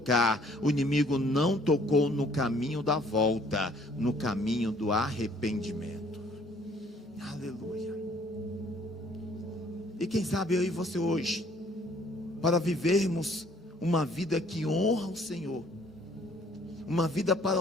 o inimigo não tocou no caminho da volta, no caminho do arrependimento. Aleluia. E quem sabe eu e você hoje, para vivermos uma vida que honra o Senhor, uma vida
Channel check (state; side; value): normal; both; correlation 0.60